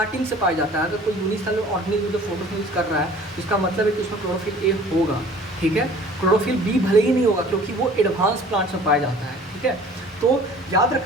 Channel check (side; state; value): both; normal; correlation 0.49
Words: से पाया जाता है। अगर कोई यूनिसेलुलर ऑर्गेनिज्म जो फोटोसिंथेसिस कर रहा है, इसका मतलब है कि उसमें क्लोरोफिल ए होगा। ठीक है, क्लोरोफिल बी भले ही नहीं होगा, क्योंकि वो एडवांस प्लांट्स में पाया जाता है। ठीक है, तो याद